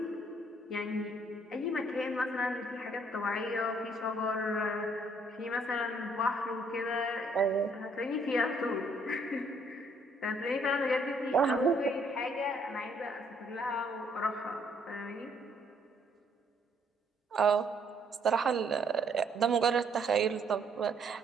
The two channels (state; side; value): normal; both; correlation 0.67